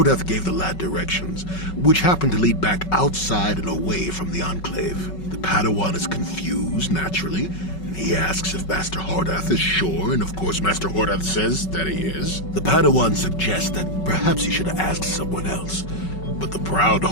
gave the lad directions, which happened to lead back outside and away from the Enclave. The Padawan is confused, naturally, and he asks if Master Hortath is sure, and of course Master Hortath says that he is. The Padawan suggests that perhaps he should have asked someone else, but the proud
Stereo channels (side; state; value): right; late; 5.3 ms